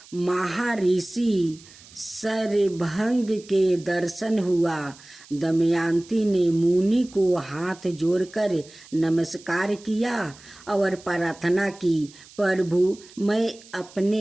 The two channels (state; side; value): noise; right; hiss, 22 dB below the sound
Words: महर्षि शरभंग के दर्शन हुआ। दमयंती ने मुनि को हाथ जोड़कर नमस्कार किया और प्रार्थना की, प्रभु, मैं